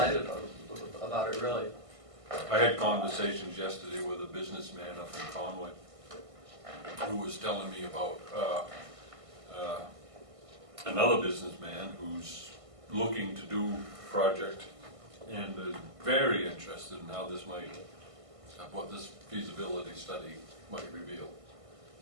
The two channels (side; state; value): left; late; 1.5 ms